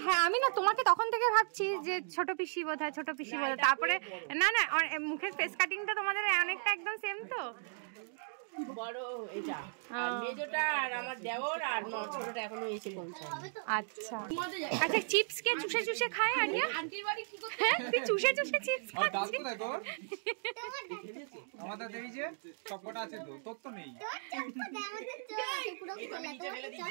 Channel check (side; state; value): left; silent; digital silence